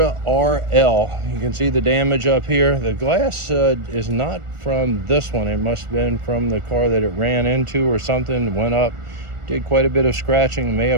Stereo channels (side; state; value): left; late; 1.4 ms